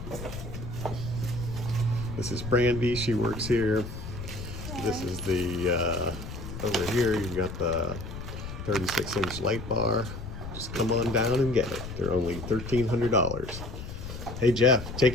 This is Brandy, she works here. This is the, over here you've got the 36-inch light bar. Just come on down and get it. They're only $1,300. Hey Jeff,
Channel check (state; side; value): noise; left; rumble, 9 dB below the sound